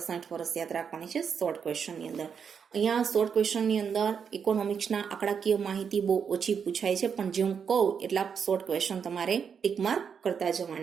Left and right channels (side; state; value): left; quieter; 6.8 dB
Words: વર્ષ યાદ રાખવાની છે શોર્ટ ક્વેશ્ચનની અંદર. અહીંયા શોર્ટ ક્વેશ્ચનની અંદર ઇકોનોમિક્સના આંકડાકીય માહિતી બહુ ઓછી પૂછાય છે, પણ જે હું કહું એટલા શોર્ટ ક્વેશ્ચન તમારે ટીક માર્ક કરતા